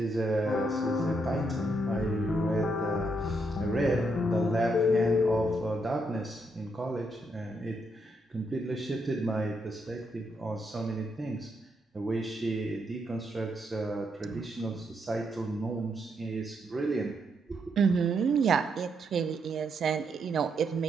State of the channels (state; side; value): normal; both; correlation 0.78